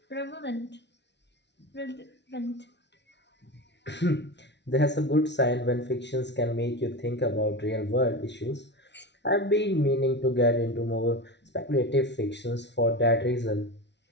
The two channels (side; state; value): right; late; 0.50 ms